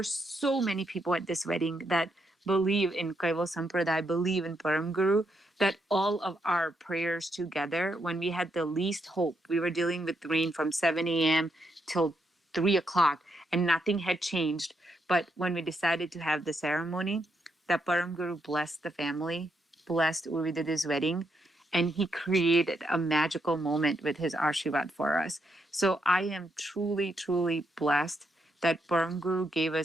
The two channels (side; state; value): both; normal; correlation 0.79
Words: so many people at this wedding that believe in Kaival Sampradaya, believe in Param Guru, that all of our prayers together, when we had the least hope, we were dealing with rain from 7 a.m. till 3 o'clock and nothing had changed. But when we decided to have the ceremony, that Param Guru blessed the family, blessed Urvididi's wedding, and he created a magical moment with his Ashirvad for us. So I am truly, truly blessed that Param Guru gave